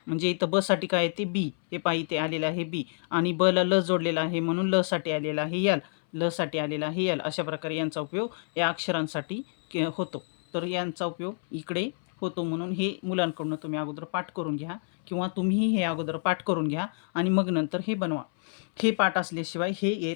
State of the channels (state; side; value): silent; right; 59 dB below the other